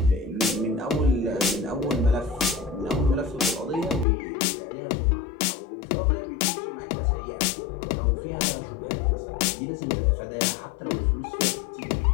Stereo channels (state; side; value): drops out; right; at 4.0 s